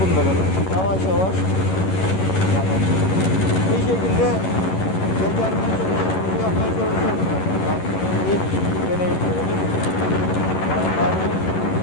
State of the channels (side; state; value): right; late; 11 ms